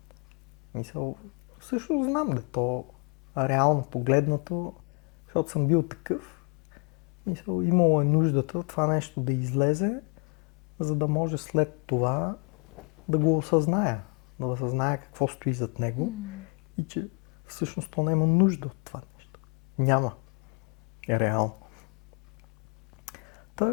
Мисля, също знам да то реално погледнато, защото съм бил такъв. Мисля, имало е нуждата това нещо да излезе, за да може след това да го осъзная. Да осъзная какво стои зад него и че всъщност то няма нужда от това нещо. Няма. Реално.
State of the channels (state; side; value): quieter; right; 33.6 dB